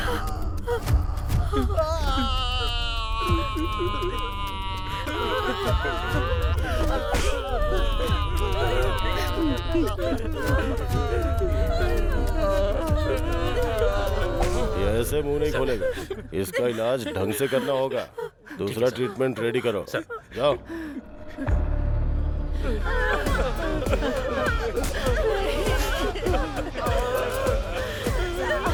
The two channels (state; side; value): identical; both; correlation 1.00